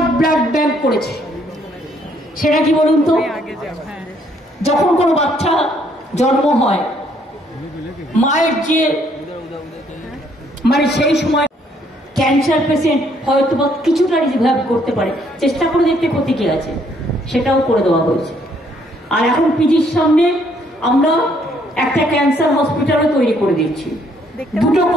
ব্লাড ব্যাংক করেছে। সেটা কি বলুন তো? যখন কোনো বাচ্চা জন্ম হয়, মায়ের যে মানে সেই সময় ক্যান্সার পেশেন্ট হয়তো বা কিছুটা রিভাইভ করতে পারে, চেষ্টা করে দেখতে ক্ষতি কি আছে, সেটাও করে দেওয়া হয়েছে। আর এখন পিজির সামনে আমরা একটা ক্যান্সার হসপিটালও তৈরি করে দিচ্ছি, দুটো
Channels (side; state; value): both; normal; correlation 0.67